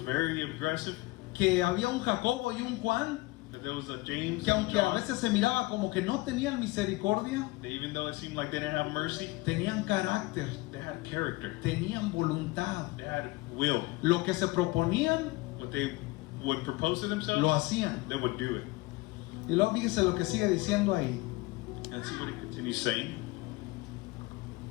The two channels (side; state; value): right; quieter; 21.6 dB